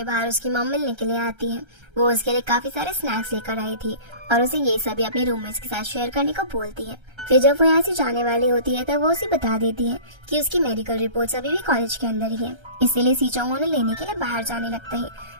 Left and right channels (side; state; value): left; late; 1.3 ms